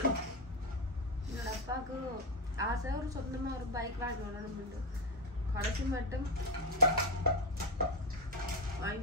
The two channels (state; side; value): normal; both; correlation 0.11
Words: என்னோட அப்பாவுக்கு ஆசை ஒரு சொந்தமா ஒரு பைக் வாங்கி ஓடணும். கடைசி மட்டும்